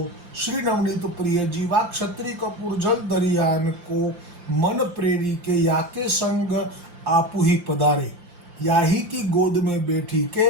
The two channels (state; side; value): late; left; 5.7 ms